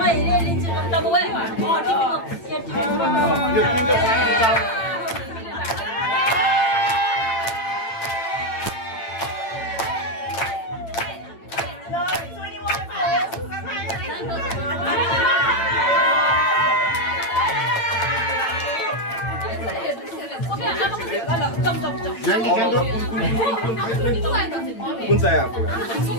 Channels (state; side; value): late; right; 8.9 ms